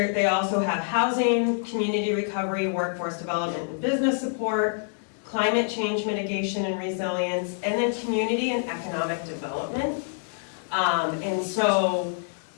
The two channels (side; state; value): right; silent; digital silence